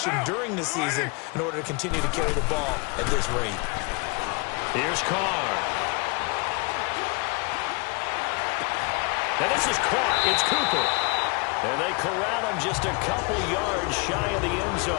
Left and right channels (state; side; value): quieter; right; 31.1 dB